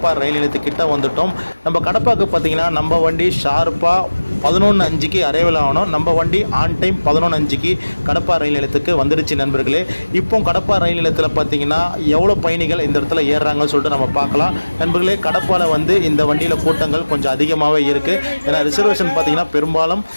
ரயில் நிலையத்துக்கிட்ட வந்துட்டோம். நம்ம கடப்பாக்கு பார்த்தீங்கன்னா நம்ம வண்டி ஷார்ப்பாக 11:05க்கு அரைவல் ஆகணும். நம்ம வண்டி ஆன் டைம் 11:05க்கு கடப்பா ரயில் நிலையத்துக்கு வந்துடுச்சு நண்பர்களே. இப்போ கடப்பா ரயில் நிலையத்தில் பார்த்தீங்கன்னா எவ்வளோ பயணிகள் இந்த இடத்துல ஏறுறாங்கன்னு சொல்லிட்டு நம்ம பார்க்கலாம் நண்பர்களே. கடப்பாவில் வந்து இந்த வண்டியில் கூட்டங்கள் கொஞ்சம் அதிகமாகவே இருக்குது. ஏன்னா ரிசர்வேஷன் பார்த்தீங்கன்னா பெரும்பாலும்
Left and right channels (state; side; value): inverted; both; correlation -1.00